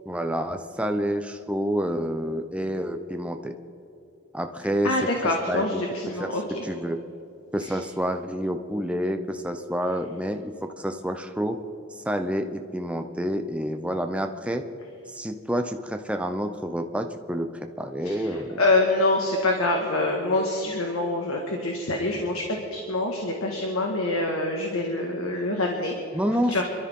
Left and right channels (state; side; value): normal; both; correlation 0.30